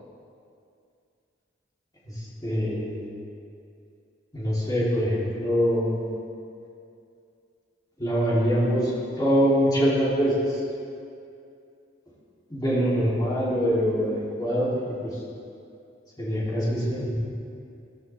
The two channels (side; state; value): both; normal; correlation 0.71